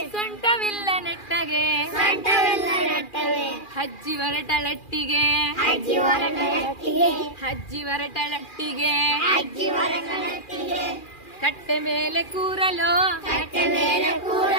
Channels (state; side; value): late; right; 2.4 ms